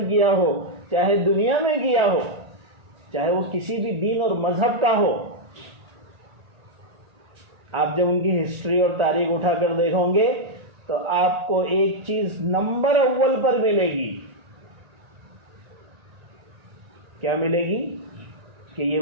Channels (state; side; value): late; left; 1.4 ms